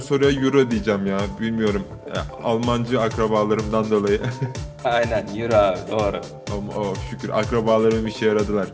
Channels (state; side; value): identical; both; correlation 1.00